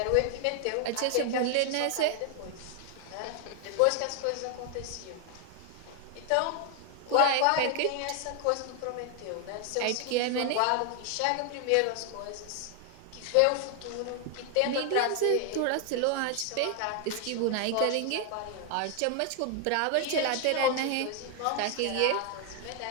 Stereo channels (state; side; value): different; both; correlation 0.00